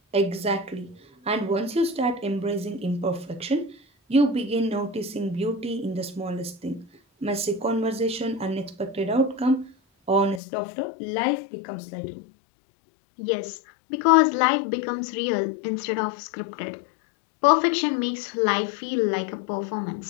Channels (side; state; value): right; drops out; at 10.4 s